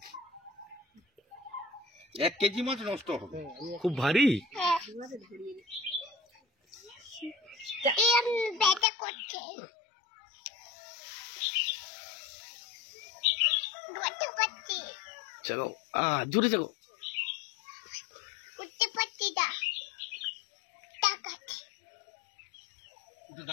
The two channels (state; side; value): drops out; right; at 8.8 s